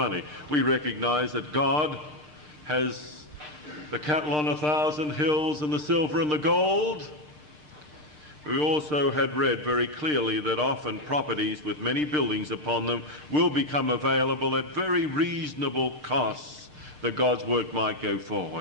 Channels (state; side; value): late; left; 6.6 ms